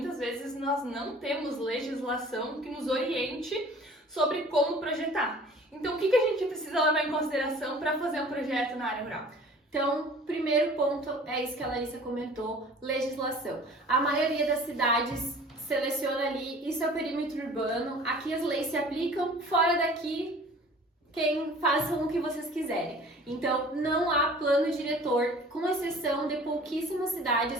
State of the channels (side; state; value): both; normal; correlation 0.47